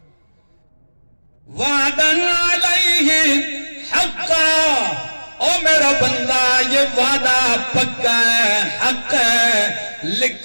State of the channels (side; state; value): both; inverted; correlation -1.00